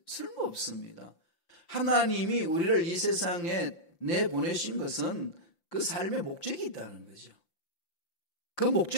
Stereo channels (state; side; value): late; right; 5.8 ms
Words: 쓸모없습니다. 하나님이 우리를 이 세상에 내보내신 것은 그 삶의 목적이 있다는 거죠. 그